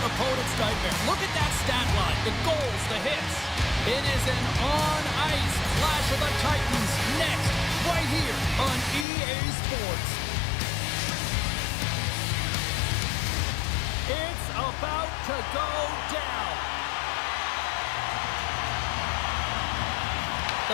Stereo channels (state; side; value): drops out; right; at 9.1 s